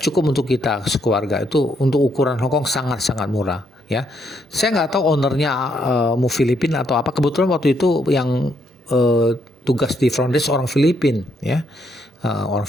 untuk kita sekeluarga, itu untuk ukuran Hong Kong sangat-sangat murah ya. Saya nggak tahu ownernya mau Filipina atau apa. Kebetulan waktu itu yang tugas di front desk orang Filipin ya, orang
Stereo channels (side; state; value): both; normal; correlation 0.75